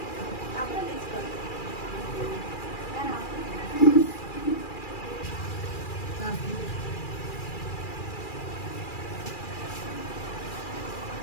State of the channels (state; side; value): late; right; 2.4 ms